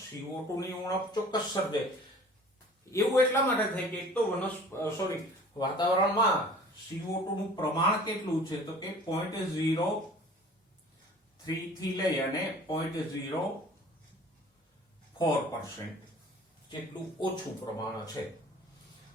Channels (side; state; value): both; normal; correlation 0.47